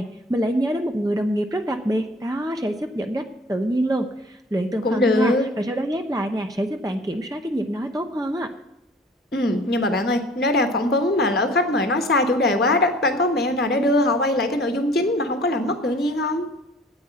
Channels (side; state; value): both; normal; correlation 0.51